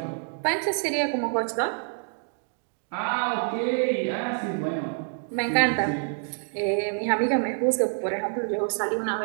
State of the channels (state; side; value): silent; left; 60 dB below the other